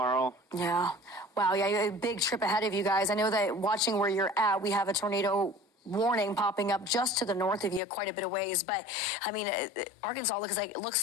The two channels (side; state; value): right; drops out; at 7.8 s